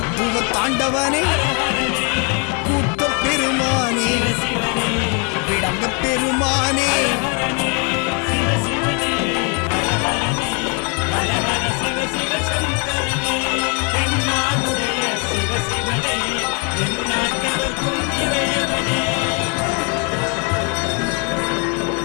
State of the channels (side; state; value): right; quieter; 35.5 dB